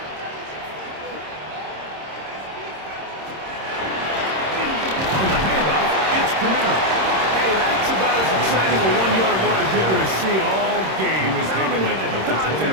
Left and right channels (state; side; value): late; left; 26 ms